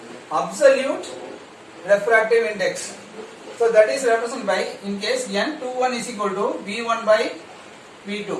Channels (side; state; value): both; identical; correlation 1.00